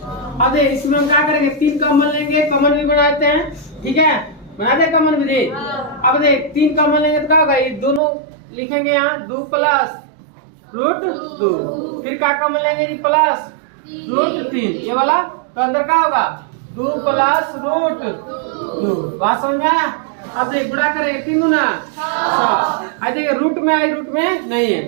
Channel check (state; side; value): drops out; left; at 8.0 s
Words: अब देख इसमें हम क्या करेंगे? 3 कॉमन लेंगे, कॉमन भी बनाते हैं, ठीक है, बनाते हैं कॉमन भी। अब देख 3 कॉमन लेंगे तो क्या होगा? ये दोनों लिखेंगे यहाँ 2 प्लस रूट 2, फिर क्या कॉमन लेंगे जी? प्लस रूट 3 ये वाला, तो अंदर क्या होगा? 2 प्लस रूट 2। बात समझ में आया? अब देख गुणा करेंगे 3 गुना 6। देखिए रूट में आई, रूट में नहीं है,